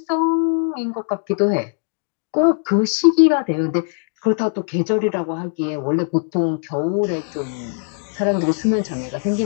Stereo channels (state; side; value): silent; right; 62 dB below the other